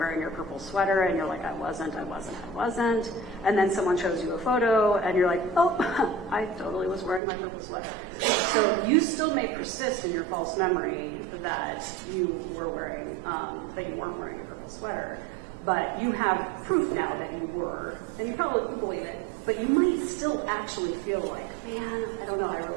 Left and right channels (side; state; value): left; drops out; at 7.2 s